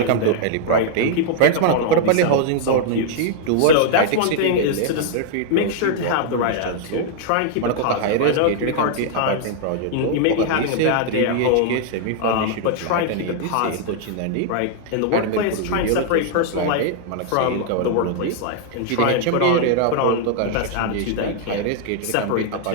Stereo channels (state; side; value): different; both; correlation -0.01